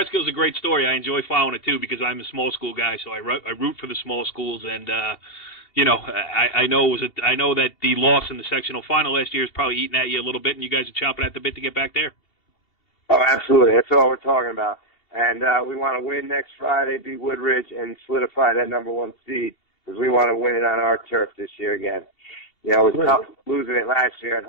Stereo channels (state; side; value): late; right; 2.7 ms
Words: a great story. I enjoy following it too because I'm a small school guy, so I root for the small schools. And I know that the loss in the sectional final last year is probably eating at you a little bit, and you guys are chomping at the bit to get back there. Oh, absolutely. That's all we're talking about. And we want to win next Friday, beat Woodridge, and solidify that number 1 seed because we want to win it on our turf this year again. It was tough losing it last year at